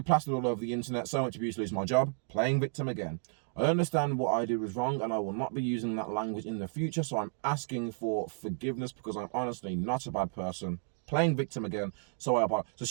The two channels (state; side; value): silent; left; digital silence